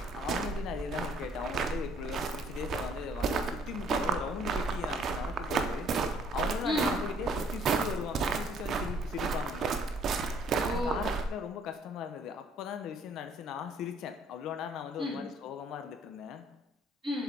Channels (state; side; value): normal; both; correlation 0.61